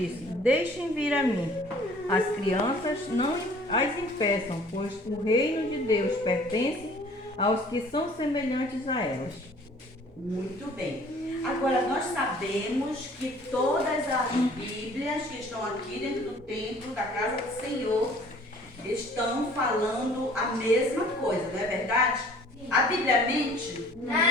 Deixem vir a mim. As crianças não as impeçam, pois o reino de Deus pertence aos que são semelhantes a elas. Muito bem. Agora, nós sabemos que todas as Bíblias que estão aqui dentro do templo, da casa do Senhor, estão falando a mesma coisa, não é verdade? A Bíblia mente?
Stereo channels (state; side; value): normal; both; correlation 0.52